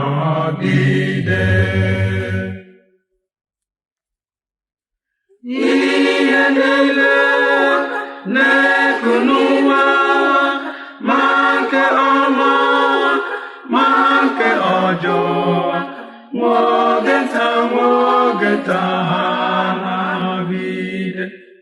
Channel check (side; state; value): both; identical; correlation 1.00